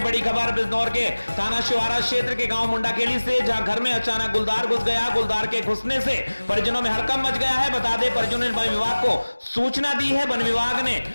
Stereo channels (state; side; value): inverted; both; correlation -1.00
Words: बड़ी खबर बिजनौर के थाना शिवारा क्षेत्र के गांव मुंडाखेड़ी से, जहां घर में अचानक गुलदार घुस गया। गुलदार के घुसने से परिजनों में हड़कंप मच गया है। बता दें परिजनों ने वन विभाग को सूचना दी है। वन विभाग ने